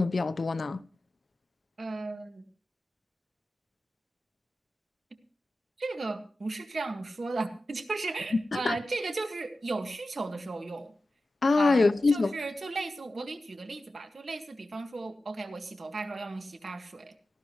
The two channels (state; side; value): normal; both; correlation 0.93